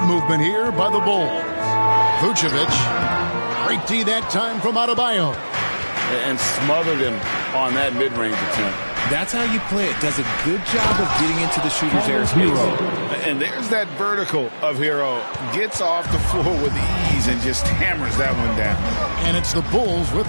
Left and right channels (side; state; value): both; inverted; correlation -1.00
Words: here by the Bulls. Vucevic. Great D that time from Adebayo. And smothered him on that mid-range attempt. That's how you play it. Does a good job of getting into the shooter's airspace. And there's that vertical of Hero. Gets off the floor with ease and just hammers that one down. And it's the Bulls